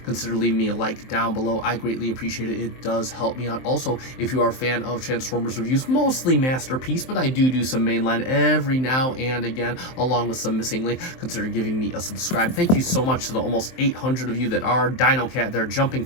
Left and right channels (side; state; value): right; late; 23 ms